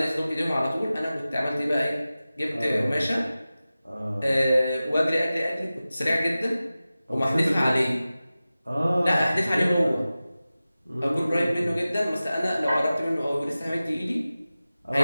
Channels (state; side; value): inverted; both; correlation -0.96